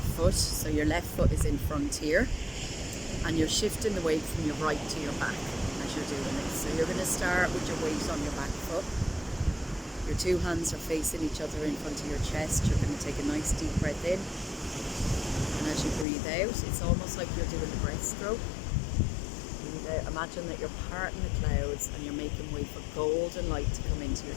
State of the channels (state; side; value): drops out; right; at 16.1 s